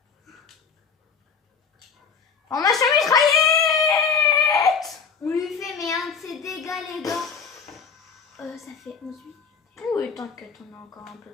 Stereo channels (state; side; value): quieter; right; 5.9 dB